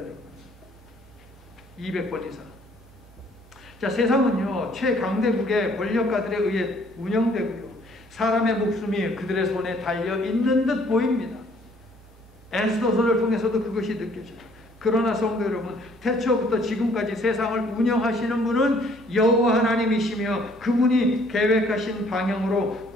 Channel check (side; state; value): both; normal; correlation 0.61